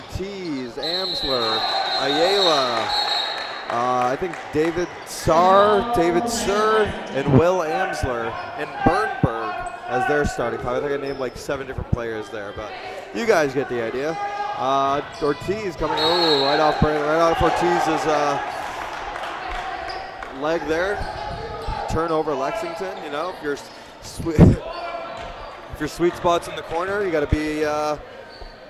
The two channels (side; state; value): both; identical; correlation 1.00